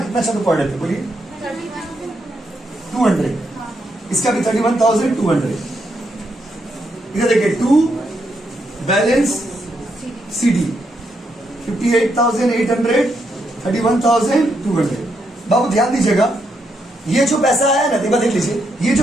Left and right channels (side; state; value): both; normal; correlation 0.79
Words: अच्छा तो पढ़ लेते। बोलिए 200, इसका भी 31,200। इधर देखिए 2 बैलेंस CD 58,800 31,200। बाबू ध्यान दीजिएगा, ये जो पैसा आया ना, देख लीजिए, ये जो